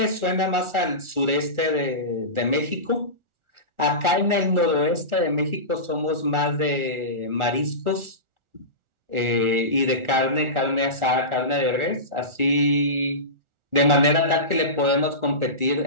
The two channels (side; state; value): left; late; 1.4 ms